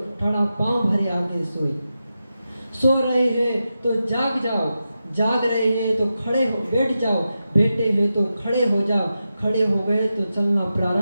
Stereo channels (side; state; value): both; inverted; correlation -0.90